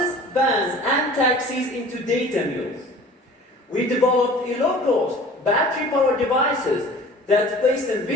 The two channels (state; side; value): normal; both; correlation 0.45